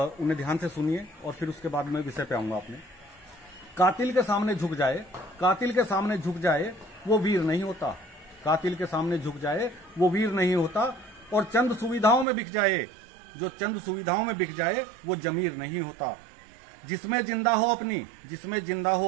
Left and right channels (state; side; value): drops out; left; at 12.2 s